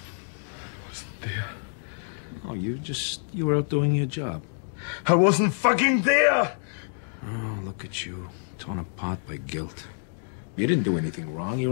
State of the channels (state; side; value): silent; right; digital silence